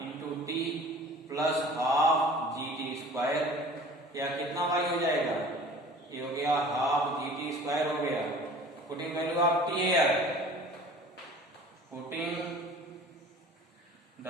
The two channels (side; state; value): both; normal; correlation 0.45